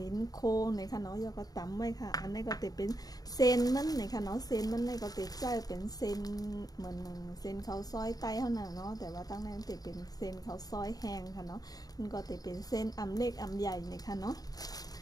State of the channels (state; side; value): late; right; 0.18 ms